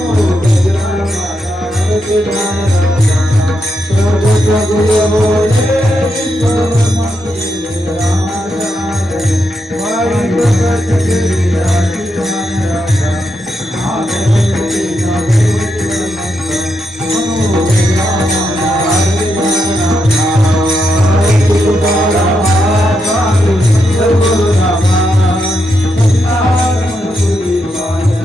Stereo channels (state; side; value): normal; both; correlation 0.83